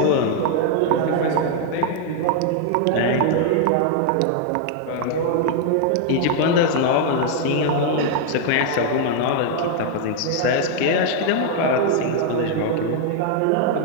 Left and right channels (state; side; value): different; both; correlation 0.00